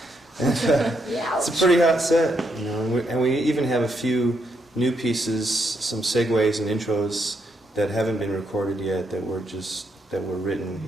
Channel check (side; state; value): both; normal; correlation 0.78